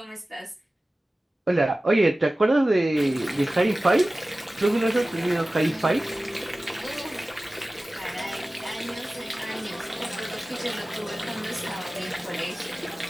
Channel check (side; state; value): both; normal; correlation 0.97